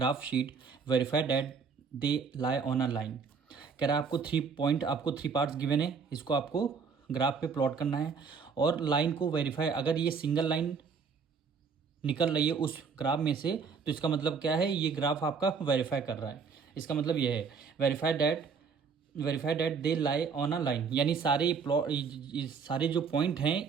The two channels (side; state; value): left; quieter; 5.6 dB